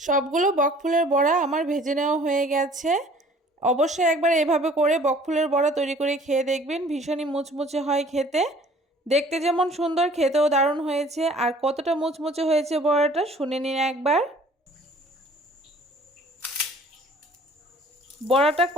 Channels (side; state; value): both; normal; correlation 0.52